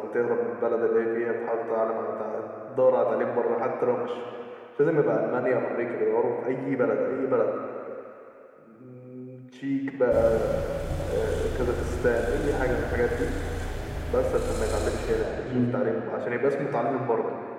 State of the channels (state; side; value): identical; both; correlation 1.00